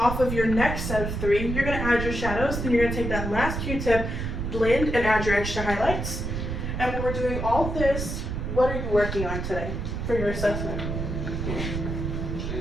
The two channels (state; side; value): noise; right; rumble, 3 dB below the sound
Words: off of your next set of 3. You're gonna add your shadows. Then you're gonna take that last Q-tip, blend, and add your extra highlights. And when we're doing all this, what are you working on today for your assessment?